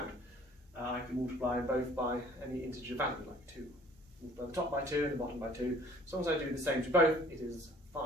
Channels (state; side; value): normal; both; correlation 0.54